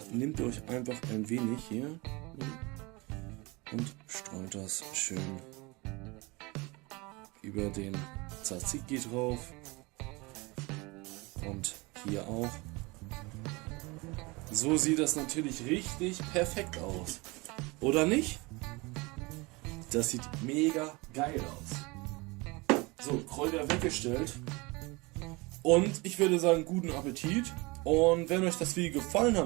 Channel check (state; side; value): quieter; left; 25.1 dB